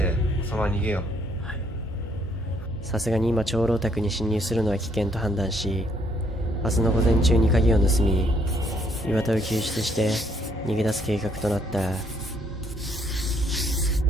そのまま逃げよう。さすがに今長老宅に侵入するのは危険と判断し、明日の午前中に鍵を盗み、岩田を救出して逃げ出す計画となった。よ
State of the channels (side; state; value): both; normal; correlation 0.68